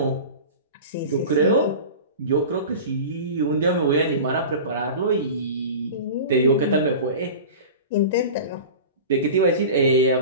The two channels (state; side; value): inverted; both; correlation -0.33